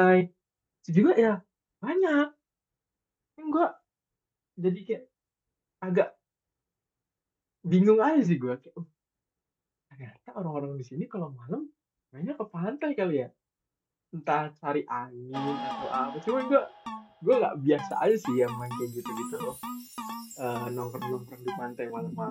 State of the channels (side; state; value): both; identical; correlation 1.00